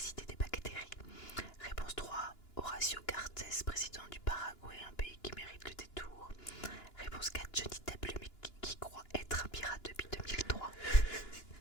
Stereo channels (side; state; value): right; late; 2.9 ms